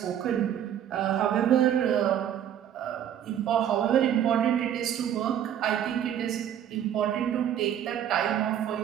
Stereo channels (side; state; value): left; quieter; 10.0 dB